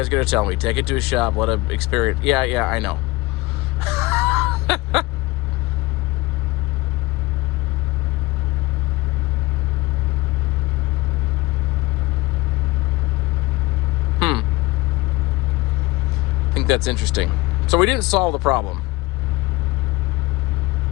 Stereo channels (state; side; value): quieter; right; 20.7 dB